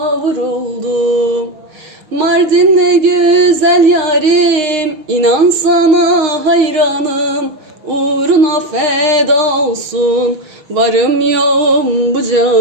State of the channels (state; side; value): late; left; 6.5 ms